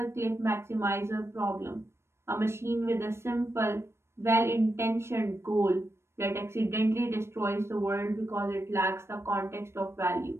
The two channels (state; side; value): late; left; 0.13 ms